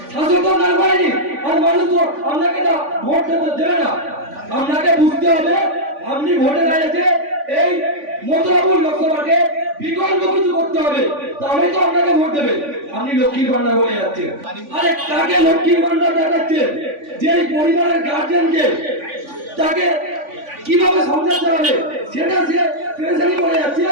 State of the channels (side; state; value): left; late; 3.5 ms